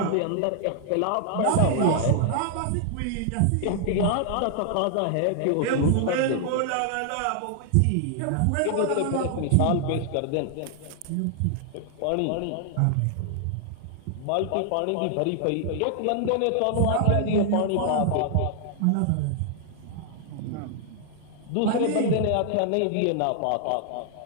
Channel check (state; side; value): different; both; correlation 0.00